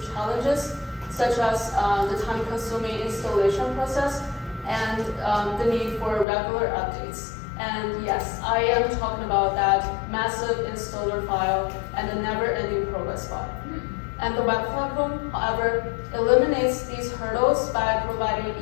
challenges, such as the time-consuming installation process and the need for regular updates. And yes, I am talking about that massive installer file and the never-ending progress bar. And the web platform, however, eliminates these hurdles by providing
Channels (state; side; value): drops out; right; at 6.2 s